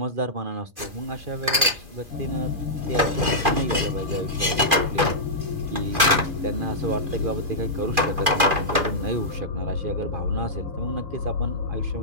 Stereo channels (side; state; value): left; late; 2.4 ms